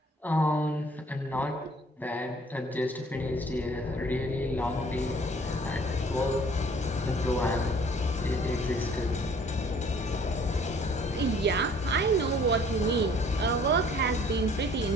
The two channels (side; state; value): both; normal; correlation 0.56